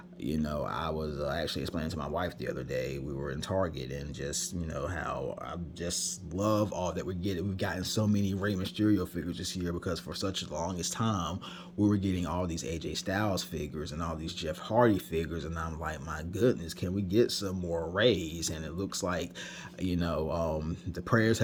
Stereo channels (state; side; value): identical; both; correlation 1.00